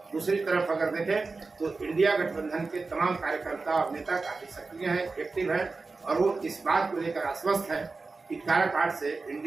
दूसरी तरफ अगर देखें तो इंडिया गठबंधन के तमाम कार्यकर्ता और नेता काफी सक्रिय हैं, एक्टिव हैं और वो इस बात को लेकर आश्वस्त है कि काराकाट से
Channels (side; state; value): left; quieter; 3.9 dB